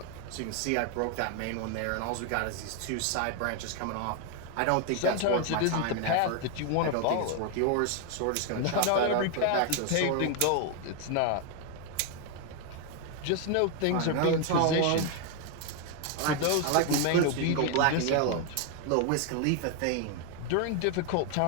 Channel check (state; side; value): different; both; correlation 0.01